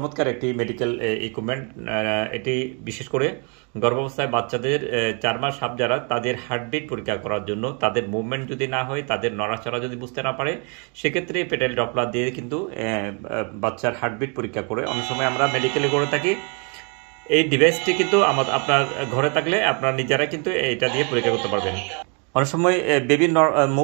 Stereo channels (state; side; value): quieter; left; 36.1 dB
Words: একটি মেডিকেল ইকুইপমেন্ট। এটি বিশেষ করে গর্ভাবস্থায় বাচ্চাদের 4 মাস আপ যারা তাদের হার্টবিট পরীক্ষা করার জন্য, তাদের মুভমেন্ট যদি না হয়, তাদের নড়াচড়া যদি বুঝতে না পারে, সেক্ষেত্রে প্যাটেল ডপলার দিয়ে কিন্তু বাচ্চার হার্টবিট পরীক্ষা করে অনেক সময় আমরা মেডিকেলে করে থাকি। এই ডিভাইসটি কিন্তু আপনার ঘরে থাকলে আপনার নিজেরা কিন্তু এটা দিয়ে পরীক্ষা করতে পারবেন। অনেক সময় বেবির